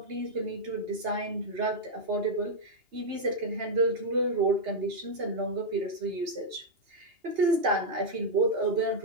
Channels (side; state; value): left; late; 2.8 ms